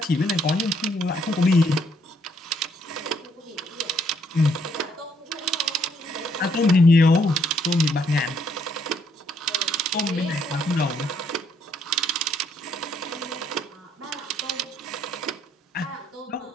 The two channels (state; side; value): normal; both; correlation 0.69